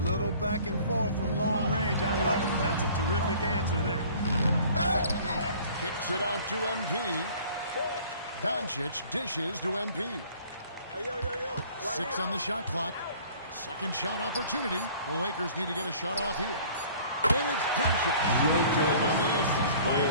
little back and forth from long range. I love it. That's a terrific answer there. Kicks it out to MP. Doncic dishes to MP. Hey, yo. Right 6 here. on the shot clock. Second shot opportunity. The Lakers need to get a shot off here. And it's Doncic. Time on the assist by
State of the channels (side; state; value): both; inverted; correlation -0.51